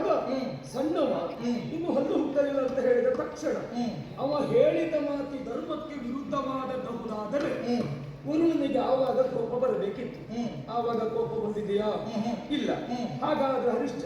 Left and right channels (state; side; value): identical; both; correlation 1.00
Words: ಸಣ್ಣವ ಇನ್ನು ಹಲ್ಲು ಹುಟ್ಟಲಿಲ್ಲ ಅಂತ ಹೇಳಿದ ತಕ್ಷಣ ಅವ ಹೇಳಿದ ಮಾತಿ ಧರ್ಮಕ್ಕೆ ವಿರುದ್ಧವಾದಬಹುದಾದರೆ ವರುಣನಿಗೆ ಆವಾಗ ಕೋಪ ಬರಬೇಕಿತ್ತು. ಆವಾಗ ಕೋಪ ಬಂದಿದೆಯಾ? ಇಲ್ಲ. ಹಾಗಾದ್ರೆ